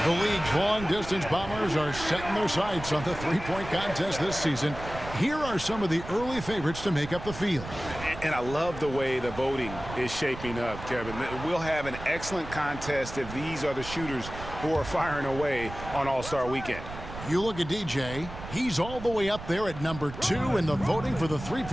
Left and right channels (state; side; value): noise; right; rumble, 11 dB below the sound